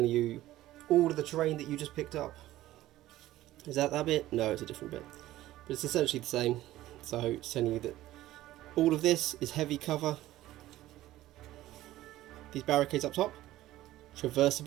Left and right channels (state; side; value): quieter; left; 15.3 dB